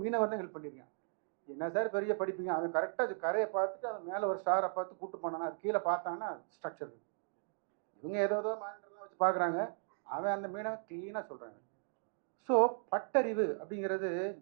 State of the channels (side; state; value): left; silent; digital silence